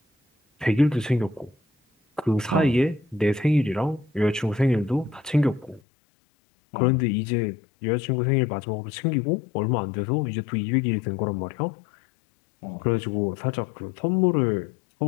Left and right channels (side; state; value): right; drops out; at 5.8 s